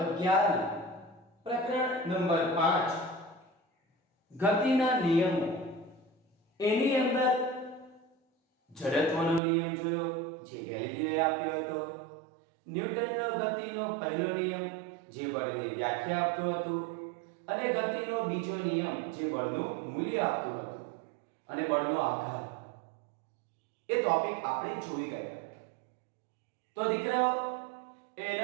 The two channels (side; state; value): left; drops out; at 9.4 s